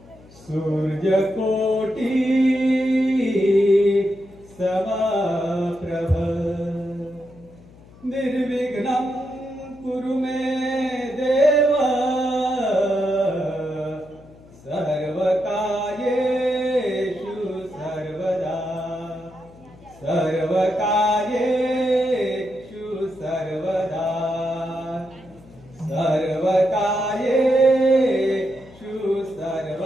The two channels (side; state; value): left; noise; hum, 23 dB below the sound